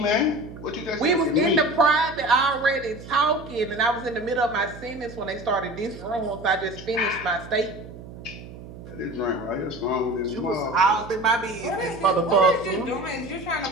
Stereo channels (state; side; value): noise; right; hum, 15 dB below the sound